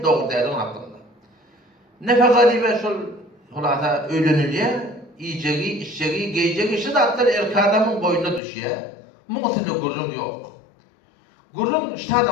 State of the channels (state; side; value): drops out; right; at 8.4 s